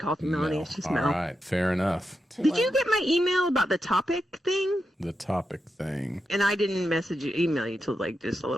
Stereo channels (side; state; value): both; normal; correlation 0.87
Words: me Melanie. It's just Mel. All right, fair enough. Did you get my email about the topic thing? The topic thing. And I didn't email you till like just a